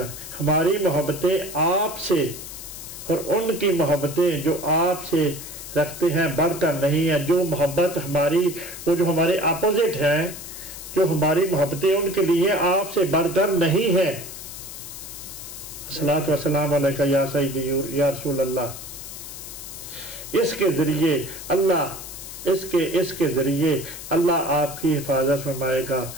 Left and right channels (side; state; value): left; noise; hiss, 11 dB below the sound